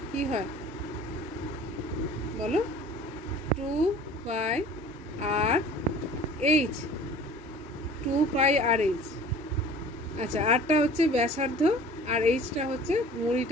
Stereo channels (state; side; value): normal; both; correlation 0.46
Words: কি হয় বলো? 2πr/h, 2πr/h। আচ্ছা, আরটা হচ্ছে ব্যাসার্ধ আর এইচটা হচ্ছে